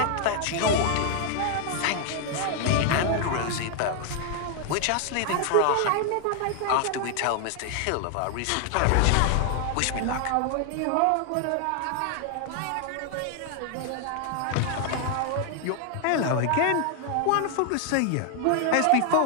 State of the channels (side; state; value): both; different; correlation 0.00